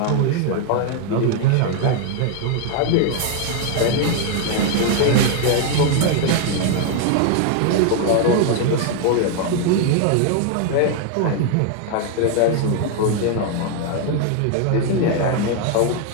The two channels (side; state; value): both; different; correlation 0.00